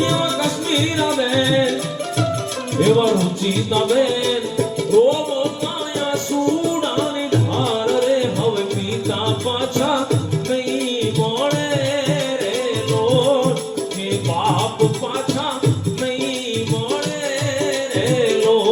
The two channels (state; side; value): identical; both; correlation 1.00